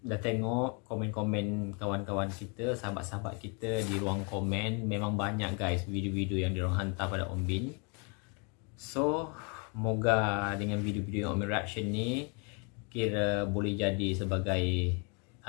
dah tengok komen-komen kawan-kawan kita, sahabat-sahabat kita di ruang komen. Memang banyak guys video-video yang diorang hantar pada Om Bin. So, moga dengan video-video yang Om Bin reaction ni kira boleh jadi sebagai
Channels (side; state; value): right; quieter; 35.3 dB